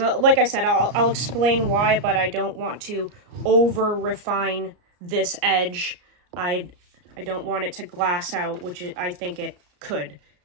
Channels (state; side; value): late; left; 34 ms